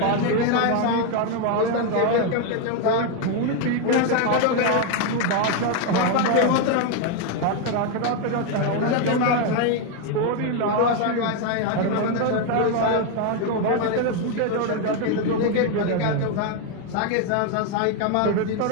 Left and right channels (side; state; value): both; different; correlation 0.01